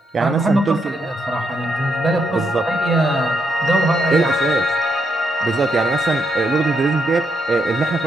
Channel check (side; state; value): both; normal; correlation 0.78